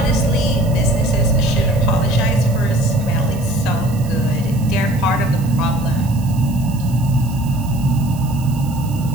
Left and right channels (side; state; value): right; noise; hiss, 19 dB below the sound